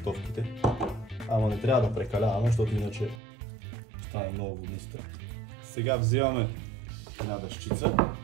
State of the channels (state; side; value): drops out; left; at 3.2 s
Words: Ама не трябва да прекаляваме, защото иначе стане много водниста. Сега взимаме една дъщица,